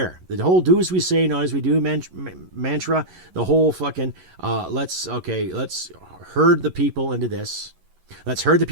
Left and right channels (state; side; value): late; left; 11 ms